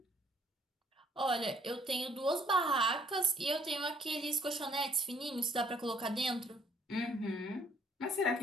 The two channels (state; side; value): normal; both; correlation 0.63